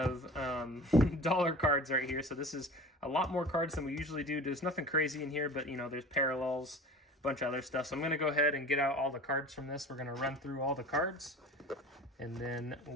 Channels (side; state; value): both; normal; correlation 0.38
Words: dollar cards right here. So this is a lot more cards than we usually do. There's nothing crazy in here, but, there's parallels, a bunch of other stuff. So I'm going to go ahead and get out all the cards from this. We're going to run through all the cards, and then